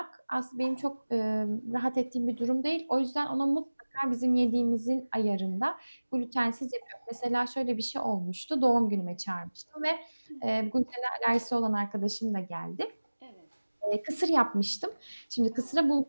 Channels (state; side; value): inverted; both; correlation -1.00